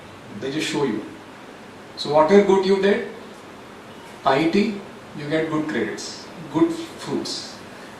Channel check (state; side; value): identical; both; correlation 1.00